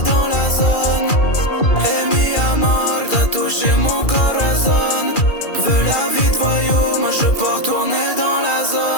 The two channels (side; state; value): right; late; 2.4 ms